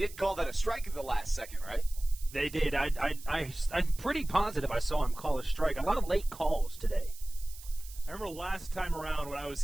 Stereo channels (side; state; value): right; noise; hiss, 17 dB below the sound